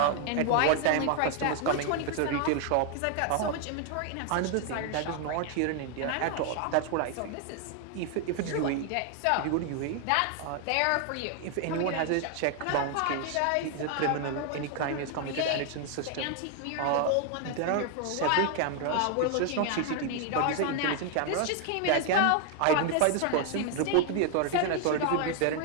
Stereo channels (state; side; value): different; both; correlation 0.00